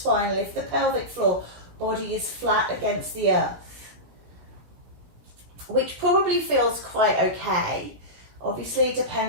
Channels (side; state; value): left; late; 17 ms